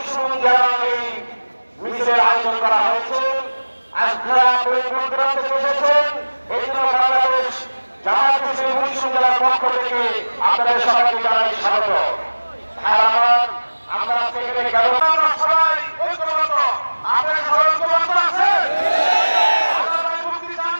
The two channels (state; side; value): inverted; both; correlation -1.00